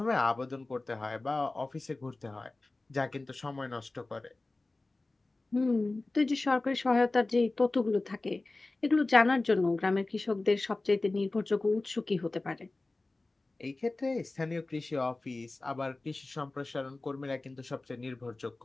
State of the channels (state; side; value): quieter; right; 3.1 dB